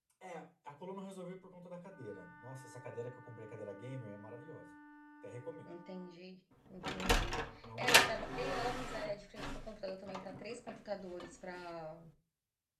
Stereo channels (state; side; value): identical; both; correlation 1.00